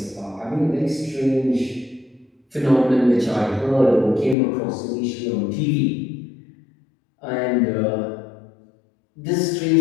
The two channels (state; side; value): drops out; right; at 4.4 s